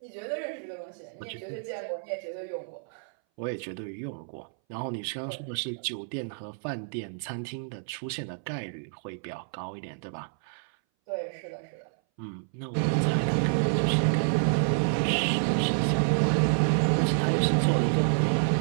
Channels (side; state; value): left; silent; 59 dB below the other